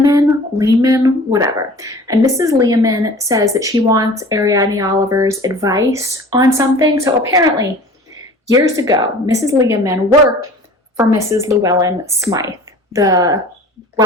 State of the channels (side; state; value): both; normal; correlation 0.44